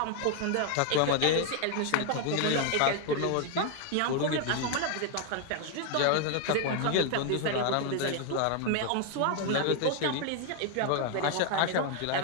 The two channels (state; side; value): different; both; correlation 0.00